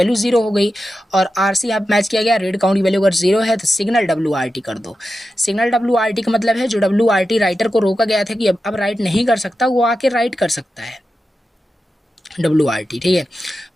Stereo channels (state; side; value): normal; both; correlation 0.91